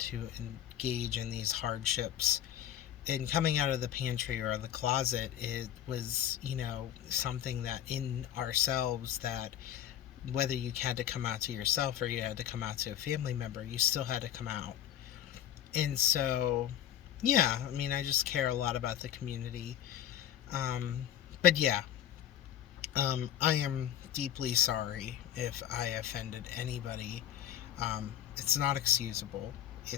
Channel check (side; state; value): right; quieter; 10.9 dB